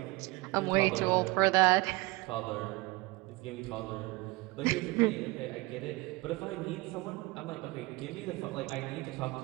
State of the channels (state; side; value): quieter; left; 23.5 dB